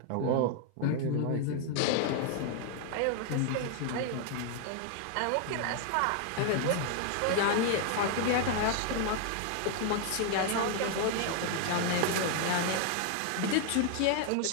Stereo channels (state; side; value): different; both; correlation 0.00